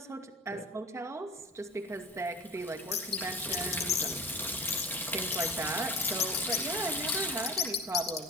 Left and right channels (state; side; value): normal; both; correlation 0.38